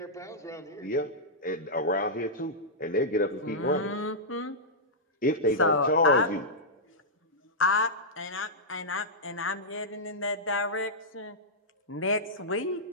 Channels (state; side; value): normal; both; correlation -0.10